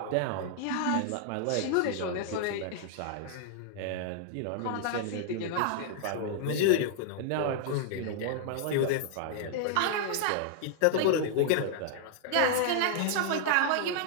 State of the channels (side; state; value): both; different; correlation -0.01